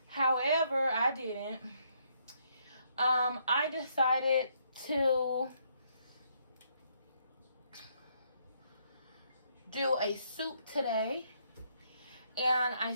However, I didn't. I decided to do a soup today. And I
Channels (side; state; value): both; inverted; correlation -0.72